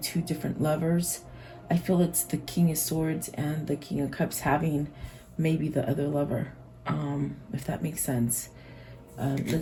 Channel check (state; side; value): identical; both; correlation 1.00